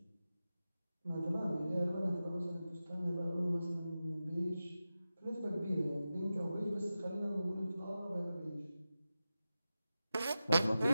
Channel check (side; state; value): both; inverted; correlation -0.93